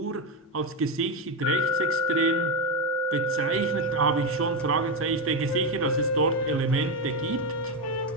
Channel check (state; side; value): normal; both; correlation 0.10